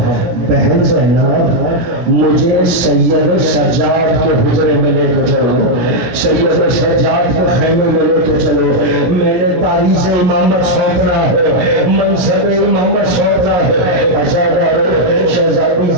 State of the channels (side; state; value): left; late; 17 ms